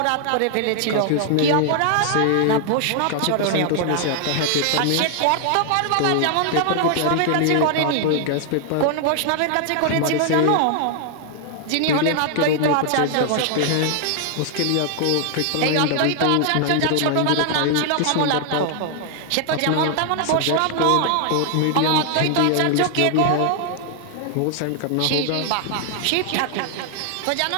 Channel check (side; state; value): both; different; correlation 0.00